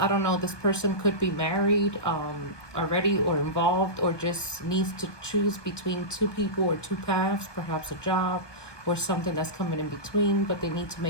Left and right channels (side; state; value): right; late; 1.1 ms